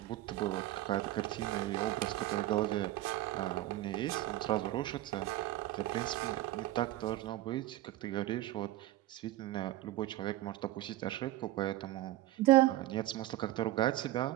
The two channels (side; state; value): left; quieter; 15.8 dB